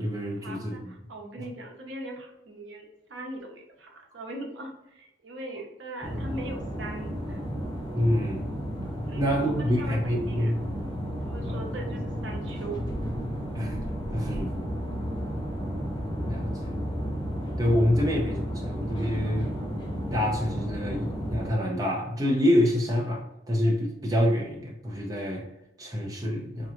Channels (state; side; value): normal; both; correlation 0.81